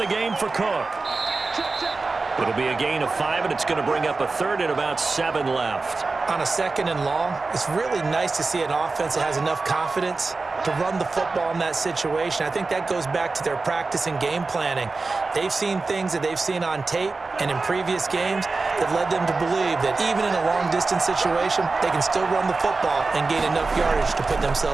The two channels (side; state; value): left; quieter; 3.8 dB